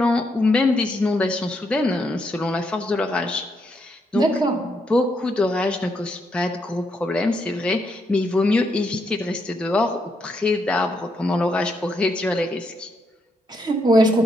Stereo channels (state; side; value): normal; both; correlation 0.78